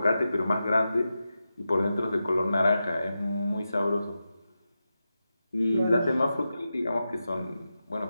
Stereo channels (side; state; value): both; inverted; correlation -0.90